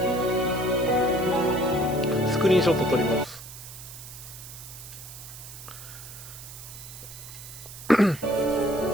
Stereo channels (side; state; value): right; noise; hiss, 14 dB below the sound